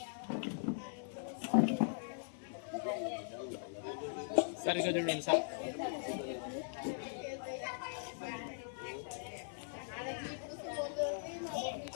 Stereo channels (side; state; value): right; silent; 51 dB below the other